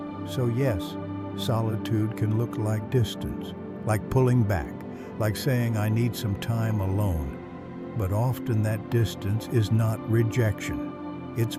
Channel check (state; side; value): identical; both; correlation 1.00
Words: So yes, solitude can look like distance, like pulling back, like saying I need some time alone. But often that distance is not rejection, it's